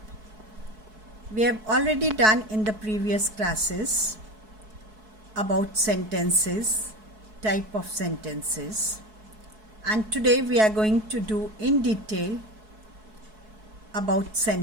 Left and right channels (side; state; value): left; late; 4.6 ms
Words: We have already done in the previous classes about sentences, type of sentences, and today we are going to do in detail about